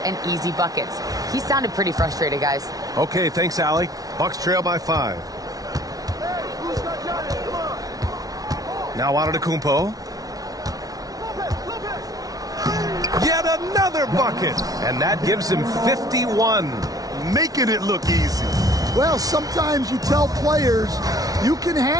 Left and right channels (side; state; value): left; late; 0.18 ms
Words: easy buckets. He sounded pretty frustrated, guys. Okay, thanks, Allie. Bucks trail by 5. Now Antetokounmpo. Yet another bucket, and that gives him 51. Making it look easy. Well, sometimes you tell players you can